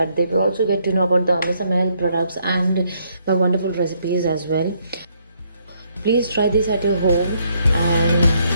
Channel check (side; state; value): both; inverted; correlation -0.71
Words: they will also get to know about the MSML products and my wonderful recipes as well. Please try this at your home, and